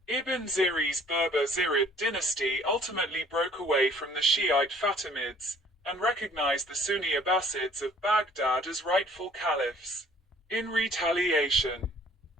Ibn Ziri's Berber Zirid dynasty ultimately broke away from the Shiite Fatimids, and recognized the Sunni Abbasids of Baghdad as rightful caliphs. In retaliation,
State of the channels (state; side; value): normal; both; correlation 0.55